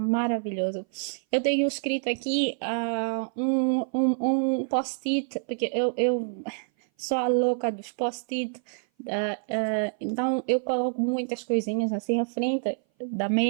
Eu tenho escrito aqui um post-it, porque eu sou a louca dos post-it. Então eu coloco muitas coisinhas assim à frente da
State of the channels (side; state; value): left; silent; 58 dB below the other